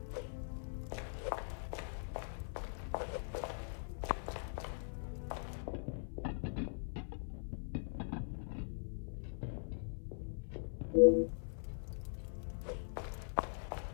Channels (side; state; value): right; silent; 50 dB below the other